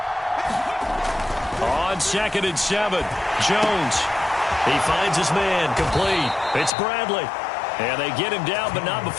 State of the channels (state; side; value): drops out; right; at 6.7 s